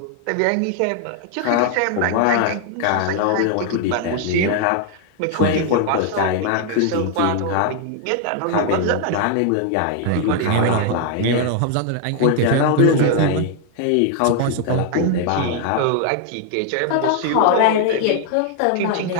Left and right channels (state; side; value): different; both; correlation 0.00